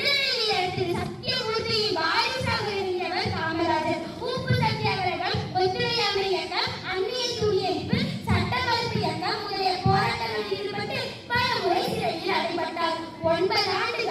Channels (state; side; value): identical; both; correlation 1.00